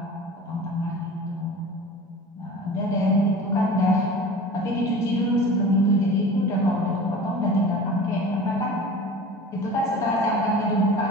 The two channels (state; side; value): normal; both; correlation 0.38